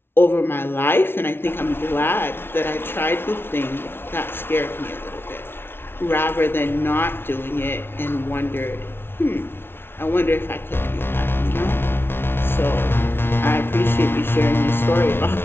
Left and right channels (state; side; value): late; right; 0.11 ms